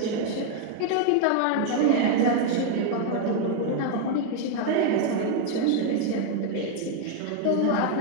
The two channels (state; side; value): different; both; correlation 0.00